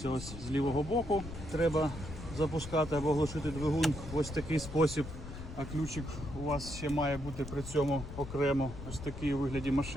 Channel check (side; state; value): left; noise; rumble, 10 dB below the sound